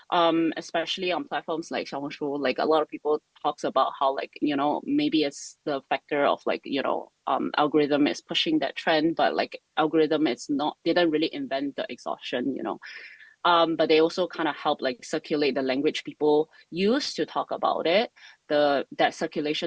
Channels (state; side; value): identical; both; correlation 1.00